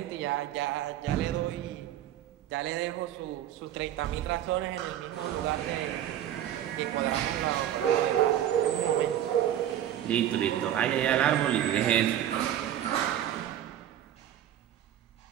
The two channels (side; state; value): left; quieter; 11.4 dB